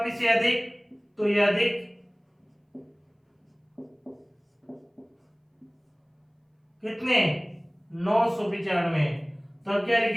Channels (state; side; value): identical; both; correlation 1.00